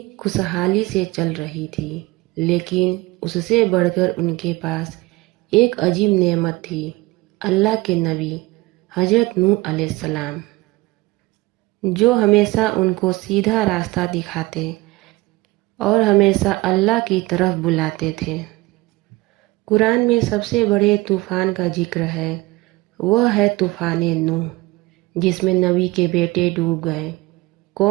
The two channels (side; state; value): left; quieter; 21.3 dB